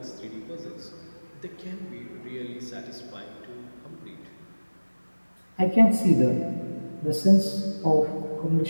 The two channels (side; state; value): both; inverted; correlation -1.00